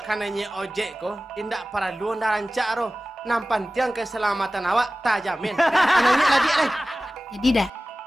kananya ojek ko, tindak perlu anda rancak roh. Nampan tiang keselamatan awak tak jamin. Kananya lagi Jadi dah.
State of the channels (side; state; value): both; normal; correlation 0.96